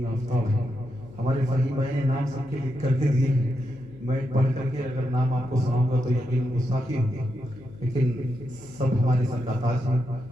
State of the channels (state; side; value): noise; left; hum, 21 dB below the sound